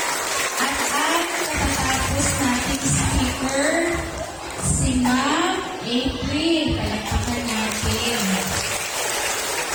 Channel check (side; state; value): both; identical; correlation 1.00